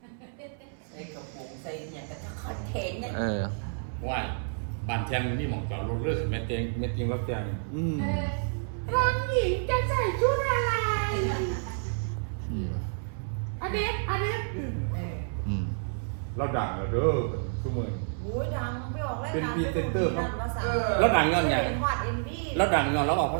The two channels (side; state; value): left; silent; 58 dB below the other